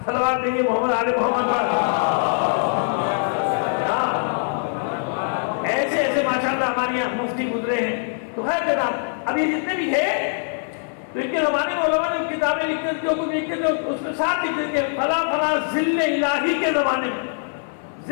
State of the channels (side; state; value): right; silent; 60 dB below the other